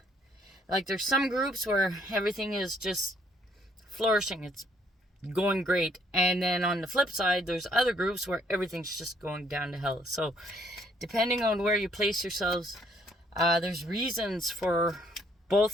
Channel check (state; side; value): normal; both; correlation 0.66